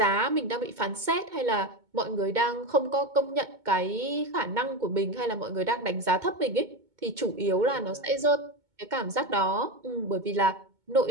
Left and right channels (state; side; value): late; left; 2.2 ms